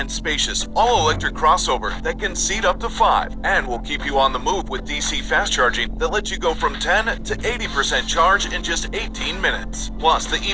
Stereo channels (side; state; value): both; identical; correlation 1.00